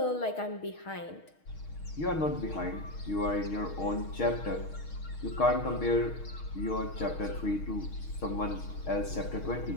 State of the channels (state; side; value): late; right; 6.4 ms